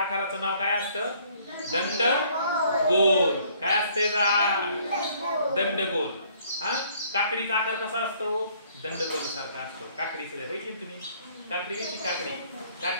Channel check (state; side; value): inverted; both; correlation -0.61